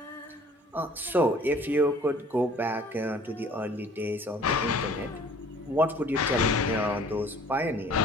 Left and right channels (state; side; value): normal; both; correlation 0.53